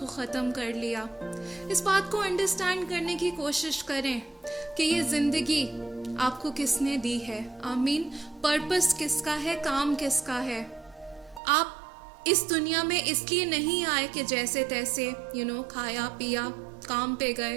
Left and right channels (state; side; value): drops out; left; at 11.4 s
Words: ख़त्म कर लिया. इस बात को अंडरस्टैंड करने की कोशिश करें कि ये ज़िंदगी आपको किसने दी है. आमीन. पर्पस किसका है, काम किसका है. आप इस दुनिया में इसलिए नहीं आए कि जैसे तैसे खाया पिया, काम पे गए,